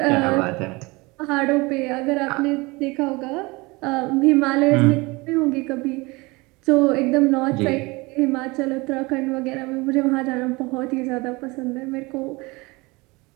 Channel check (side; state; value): left; quieter; 24.4 dB